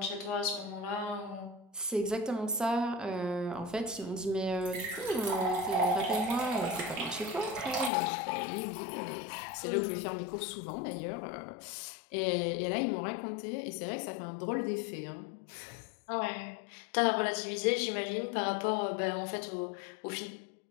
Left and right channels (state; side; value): drops out; right; at 7.9 s